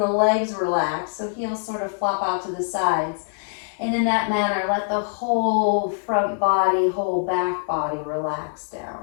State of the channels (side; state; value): right; silent; digital silence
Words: the legs relax. So heels sort of flop out to the sides. And in that manner, let the whole front body, whole back body relax